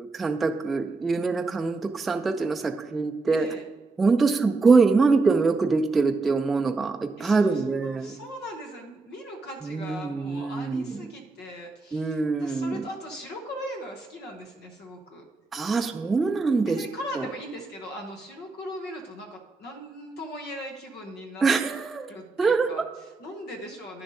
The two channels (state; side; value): quieter; left; 3.8 dB